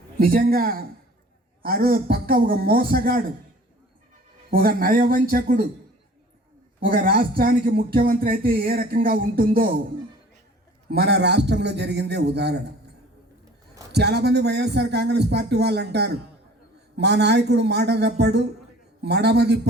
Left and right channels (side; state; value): both; normal; correlation 0.48